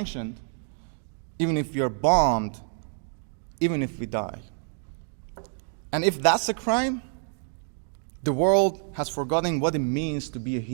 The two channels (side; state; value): left; silent; 56 dB below the other